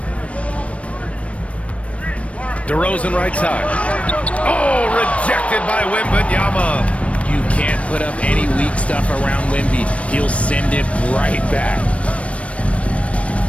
DeRozan right side. Oh, rejected by Wembanyama. You can't put up any weak stuff around Wemby. He'll send it right back.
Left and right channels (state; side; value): late; right; 0.063 ms